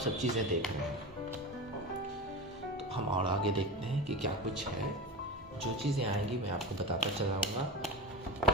चीज़ें देख रहे हैं। तो हम और आगे देखते हैं कि क्या कुछ है। जो चीज़ें आएंगी मैं आपको बताता चलाऊँगा।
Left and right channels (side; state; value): both; normal; correlation 0.27